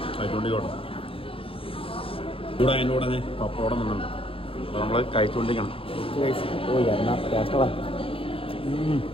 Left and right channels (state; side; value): late; right; 0.27 ms